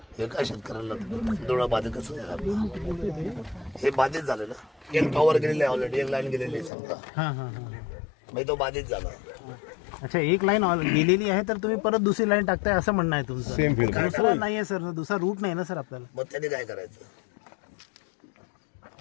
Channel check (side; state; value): right; drops out; at 6.7 s